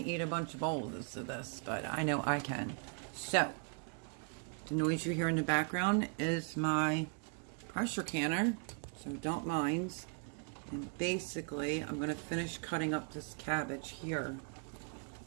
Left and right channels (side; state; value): left; quieter; 38.0 dB